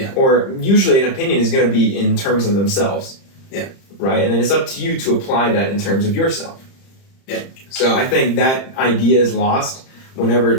or usually an opinion is going to be in terms of themselves. Yeah. Right? And then it's up to you to apply that in terms of yourself. Yeah. So I think that idea is lost whenever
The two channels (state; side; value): late; right; 30 ms